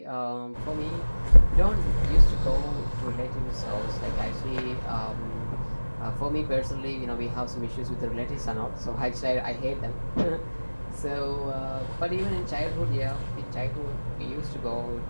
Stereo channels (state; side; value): inverted; both; correlation -1.00